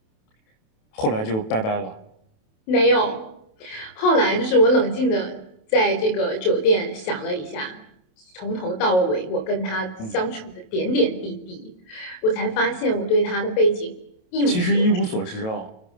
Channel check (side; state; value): right; late; 27 ms